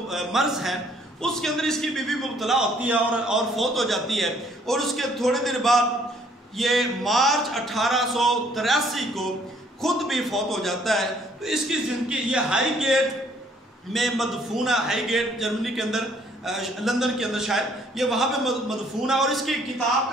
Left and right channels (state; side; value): normal; both; correlation 0.63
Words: مرض ہے اس کے اندر اس کی بیوی مبتلا ہوتی ہے اور فوت ہو جاتی ہے. اور اس کے تھوڑے دن بعد یہ مارچ 1883 کو خود بھی فوت ہو جاتا ہے. تو اس کی زندگی یہ ہائی گیٹ میں مدفون ہے. ہائی گیٹ جرمنی کے اندر, لندن کے اندر شاید, یہ وہاں پہ مدفون ہے. اور اس کی کتاب